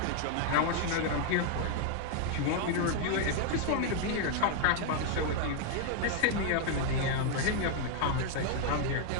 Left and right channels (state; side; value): different; both; correlation 0.00